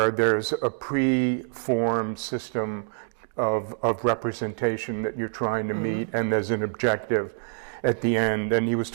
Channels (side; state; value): left; silent; digital silence